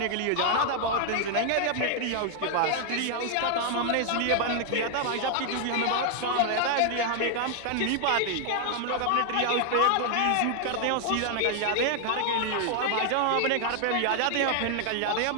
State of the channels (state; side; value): different; both; correlation 0.00